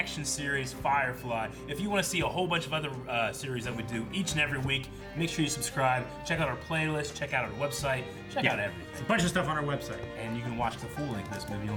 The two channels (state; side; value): identical; both; correlation 1.00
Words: series, Firefly. If you want to see a whole bunch of other series that we do each and every week, make sure you subscribe. Check out our playlist. Check out our website. Check out everything. There's a bunch of stuff on our website. And you can watch the full length of this movie on